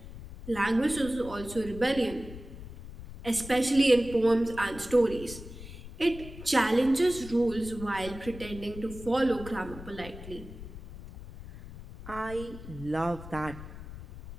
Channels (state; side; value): noise; left; rumble, 13 dB below the sound